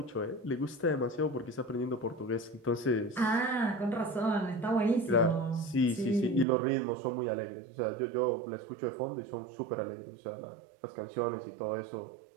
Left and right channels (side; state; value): left; drops out; at 6.5 s